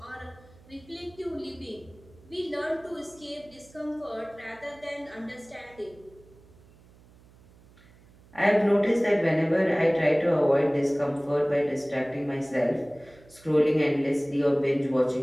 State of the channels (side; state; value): right; noise; hum, 26 dB below the sound